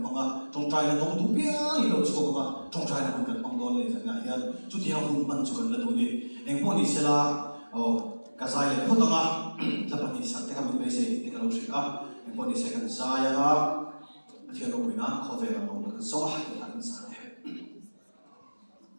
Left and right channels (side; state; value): both; inverted; correlation -1.00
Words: bằng à trong trai là đông đủ bia đi đâu chụp mà trong trai là không cần bằng đòn này chẳng hạn hiện chút thì không mình chụp cần là đủ đi em có đi xe là cái dài là không tăng à là bạn đi sang cái mình bây giờ thì cái lâu sẽ em có đi xe cần dài à thì nó bị nát khó về là đông được gió hay là cái dài